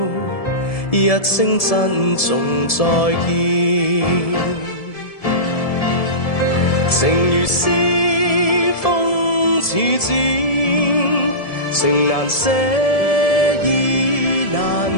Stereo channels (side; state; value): right; late; 1.7 ms